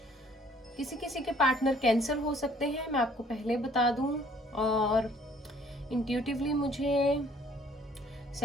किसी किसी के पार्टनर कैंसर हो सकते हैं, मैं आपको पहले बता दूं। और इंट्यूटिवली मुझे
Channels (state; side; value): normal; both; correlation 0.59